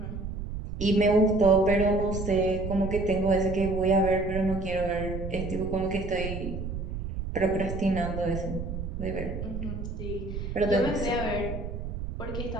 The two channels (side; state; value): right; noise; rumble, 6 dB below the sound